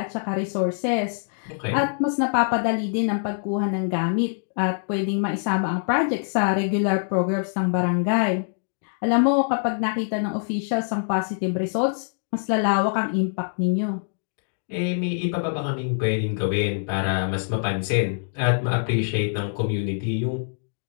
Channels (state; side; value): silent; right; digital silence